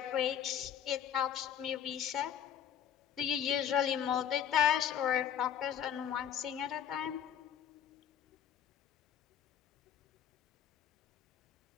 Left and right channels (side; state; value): right; quieter; 9.3 dB